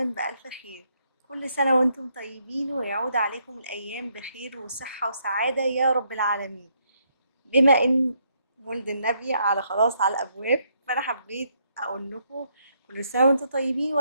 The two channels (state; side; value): inverted; both; correlation -0.74